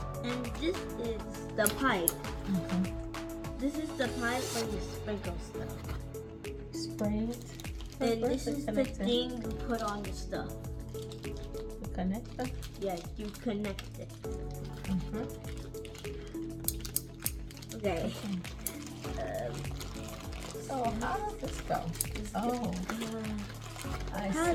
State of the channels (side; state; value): both; identical; correlation 1.00